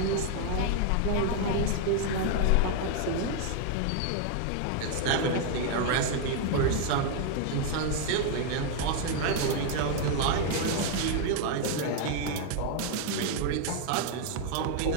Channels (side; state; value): both; different; correlation 0.00